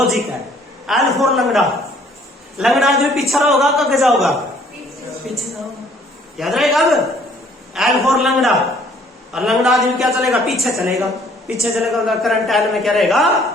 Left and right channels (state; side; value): normal; both; correlation 0.59